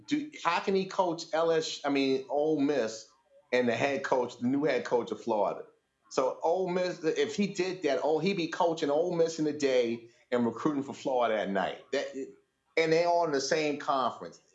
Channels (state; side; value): identical; both; correlation 1.00